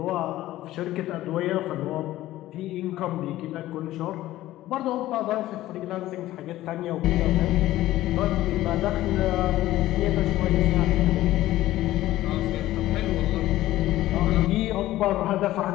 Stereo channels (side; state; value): right; quieter; 15.3 dB